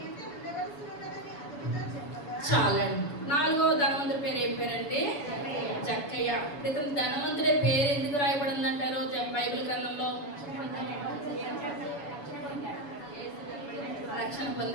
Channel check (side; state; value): right; late; 7.0 ms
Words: చాలండి. 4వ ధనవంతుడి పేరు ఏం పేరంటే జక్కయ్య. ఇతను ధనవంతుడే పేరు ఎందుకు రాయబడింది అంటారు బైబిల్ గ్రంథంలో, రక్షణ